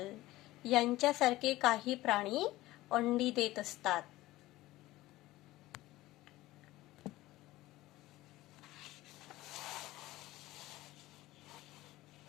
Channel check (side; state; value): right; quieter; 17.4 dB